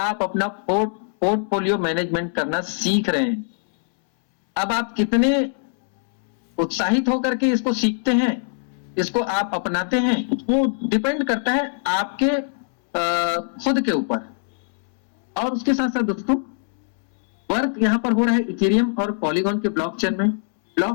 अपना पोर्टफोलियो मैनेजमेंट करना सीख रहे हैं। अब आप कितने उत्साहित होकर के इसको सीखते हैं, इसको आप अपनाते हैं, वो डिपेंड करता है आपके खुद के ऊपर। और उसके साथ साथ दोस्तों वर्क यहां पर हो रहा है इथेरियम और पॉलीगॉन के ब्लॉकचेन में।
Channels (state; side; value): silent; right; 64 dB below the other